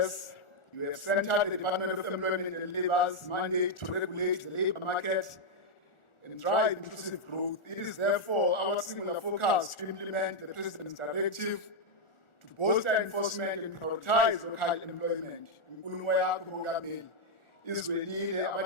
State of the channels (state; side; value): late; right; 1.4 ms